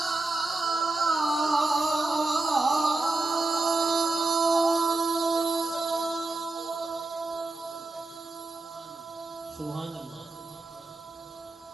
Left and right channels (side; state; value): left; quieter; 3.2 dB